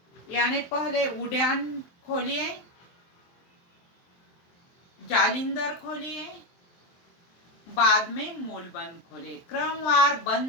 यानी पहले उद्यान खोलिए, जालिंदर खोलिए, बाद में मूल बंद खोलिए। क्रमवार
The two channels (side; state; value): right; late; 23 ms